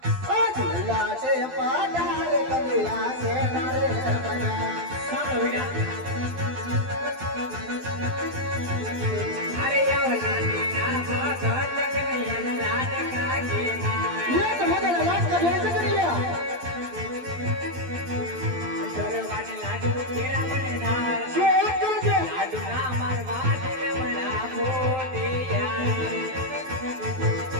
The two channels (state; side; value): late; left; 12 ms